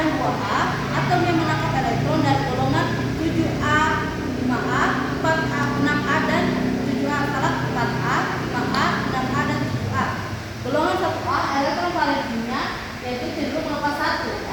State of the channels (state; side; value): identical; both; correlation 1.00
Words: 2A, atom yang menangkap elektron dari golongan 7A, 5A, 4A, 6A dan 7A, 4A, 5A, 6A dan 7A. Golongan 1A elektron valensinya yaitu cenderung melepas 1